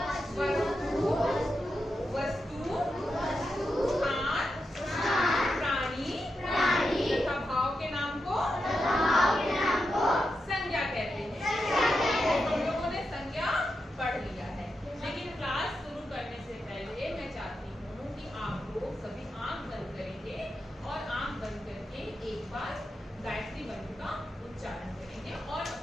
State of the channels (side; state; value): both; normal; correlation 0.87